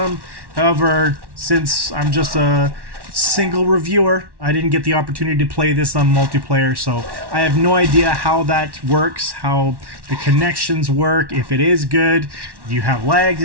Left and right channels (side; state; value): left; late; 1.1 ms